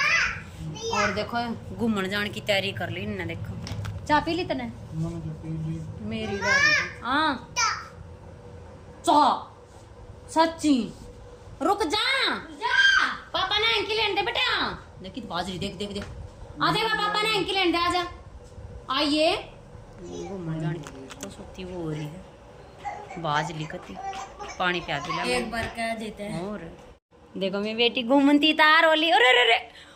और देखो घूमने जाने की तैयारी कर ली इन्हें। देखो चाय पी ली तने मेरी हाँ चाह सच्ची रुक जा पापा ने एंकी लेने दे बेटा। देखी तो बाजरी देख देख देख आ देगा पापा ने एंकी लेने दे आजा आइए। घूमने जाने की तो सोती वो हो रही है बाज लिखती पानी पिया दिला एक बार कह देते हैं। और देखो मेरी बेटी घूमती तार होली। अरे अरे अरे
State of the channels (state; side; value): identical; both; correlation 1.00